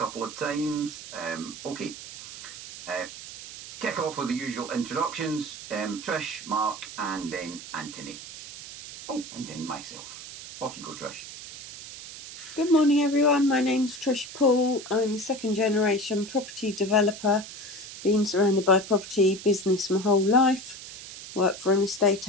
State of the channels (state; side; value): noise; right; hiss, 13 dB below the sound